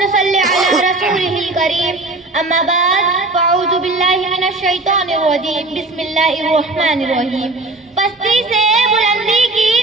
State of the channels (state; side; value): quieter; left; 3.0 dB